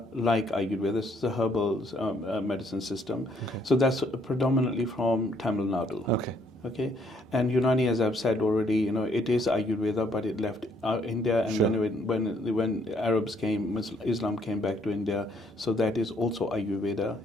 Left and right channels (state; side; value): normal; both; correlation 0.67